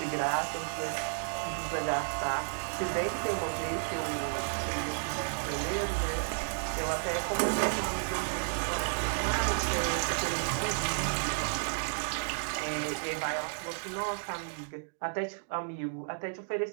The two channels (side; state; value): left; silent; digital silence